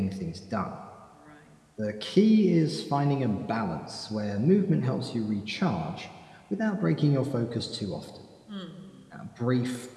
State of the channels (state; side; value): identical; both; correlation 1.00